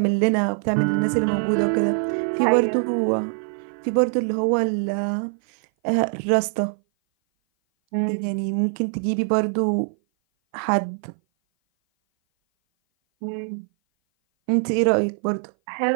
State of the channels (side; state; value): left; silent; 58 dB below the other